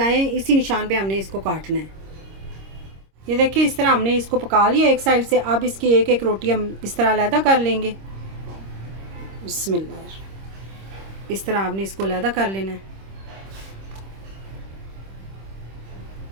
हैं इसी निशान पे हमने इसको काटना है। ये देखिए इस तरह हमने इसको पका लिया एक साइड से। अब इसकी एक एक रोटी हम इस तरह अलहदा कर लेंगे। बिस्मिल्लाह इस तरह आपने इसको अलहदा कर लेना है।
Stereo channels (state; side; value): late; left; 26 ms